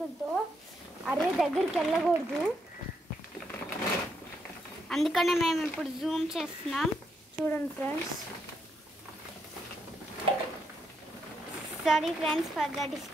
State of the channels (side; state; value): both; normal; correlation 0.78